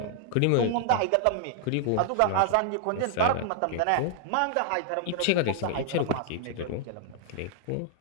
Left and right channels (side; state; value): both; different; correlation -0.01